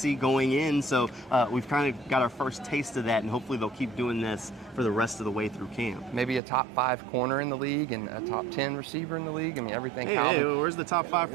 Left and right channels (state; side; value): drops out; left; at 6.4 s